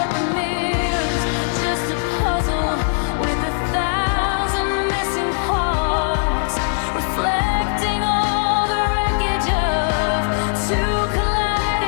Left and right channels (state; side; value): silent; right; digital silence